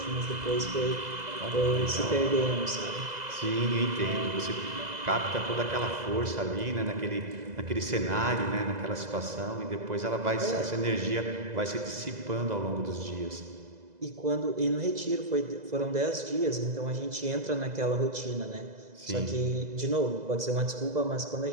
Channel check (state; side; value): late; left; 2.0 ms